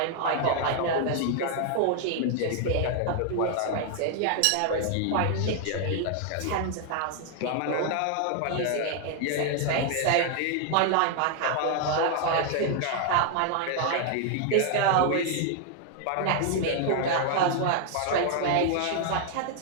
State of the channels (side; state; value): both; different; correlation 0.00